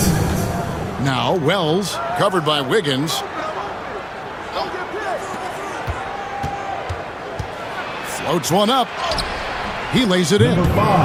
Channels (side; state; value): both; identical; correlation 1.00